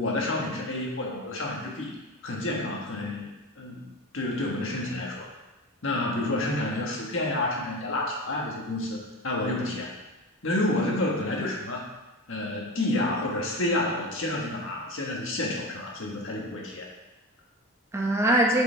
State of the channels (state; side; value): normal; both; correlation 0.27